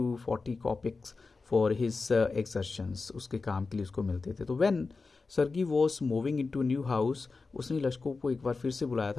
40 kopecks for his exertions, उसके काम के लिए उसको मिलते थे। तो when Sergei was moving in to new house, उसने लश्कोफ को एक बार फिर से बुलाया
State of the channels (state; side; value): quieter; right; 4.1 dB